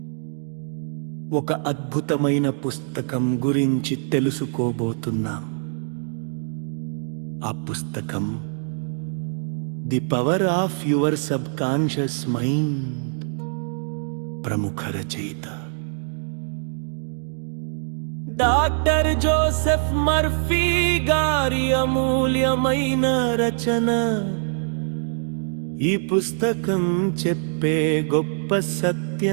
ఒక అద్భుతమైన పుస్తకం గురించి తెలుసుకోబోతున్నాం. ఆ పుస్తకం the power of your sub conscious mind. ప్రముఖ రచయిత డాక్టర్ జోసెఫ్ మర్ఫీ గారి అమూల్యమైన రచన. ఈ పుస్తకం చెప్పే గొప్ప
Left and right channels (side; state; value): left; silent; digital silence